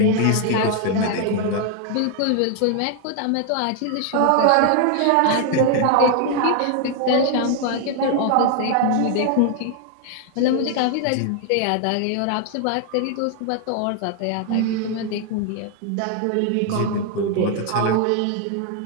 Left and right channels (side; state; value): both; different; correlation 0.00